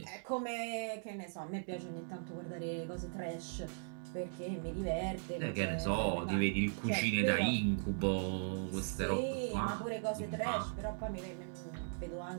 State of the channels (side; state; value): left; silent; digital silence